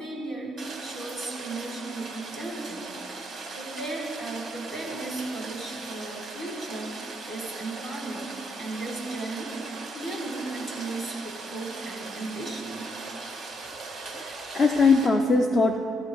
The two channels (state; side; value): normal; both; correlation 0.76